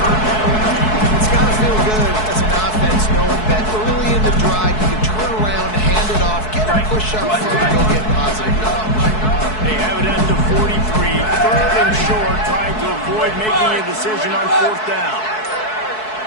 decision on fourth down.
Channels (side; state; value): right; late; 4.6 ms